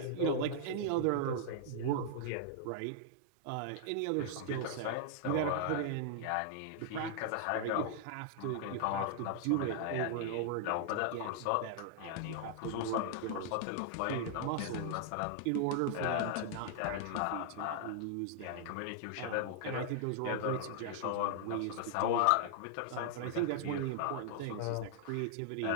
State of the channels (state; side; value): different; both; correlation -0.01